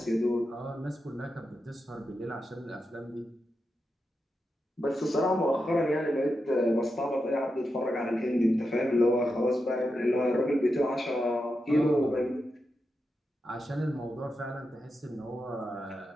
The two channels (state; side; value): normal; both; correlation 0.88